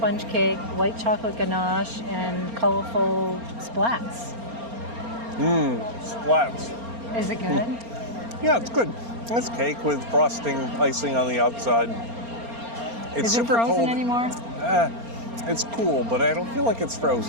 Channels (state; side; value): late; left; 4.3 ms